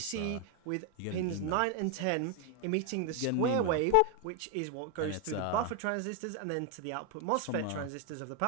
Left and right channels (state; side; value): different; both; correlation 0.01